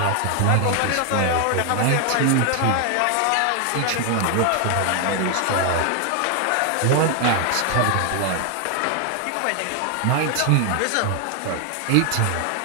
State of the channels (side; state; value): both; different; correlation 0.01